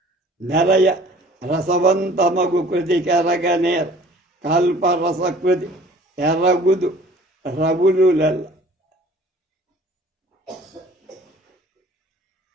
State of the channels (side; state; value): both; normal; correlation 0.50